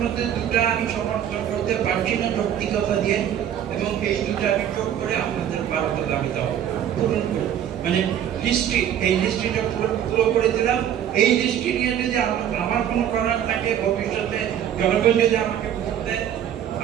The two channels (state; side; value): quieter; left; 10.0 dB